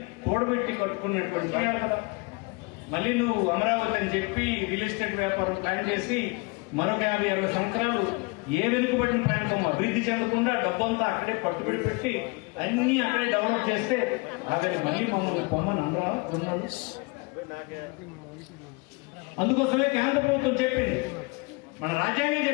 కూడబెట్టి కట్టుకున్నటువంటి కదా. మళ్ళీ నువ్వు అమరావతి అని చెప్పి రియల్ ఎస్టేట్ వ్యాపారం ప్లాన్ చేసి మరొక 50-60 సంవత్సరాలు ఏ వెనుకబడిన ప్రాంతం అభివృద్ధి చెందకుండా డబ్బంతా అక్కడే పట్టుబడి పెట్టి అన్ని అక్కడే డెవలప్ చేస్తే ఆఖరి మళ్ళీ మమ్మల్ని పొమ్మని అనరా ఉన్నాడు. అందుకోసమే కేంద్ర ప్రభుత్వం చెప్పింది, మన రాజ్యాంగం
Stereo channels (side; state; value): right; quieter; 28.1 dB